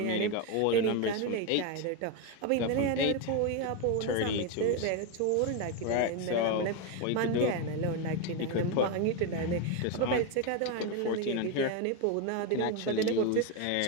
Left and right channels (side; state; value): both; different; correlation 0.02